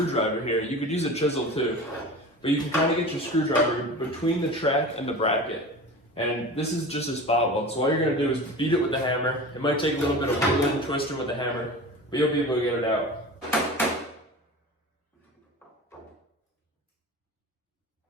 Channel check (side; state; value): both; normal; correlation 0.34